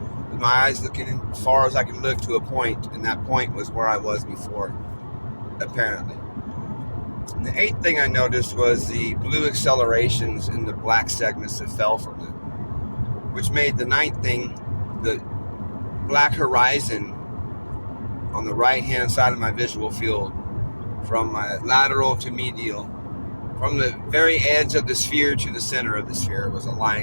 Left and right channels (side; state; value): both; inverted; correlation -1.00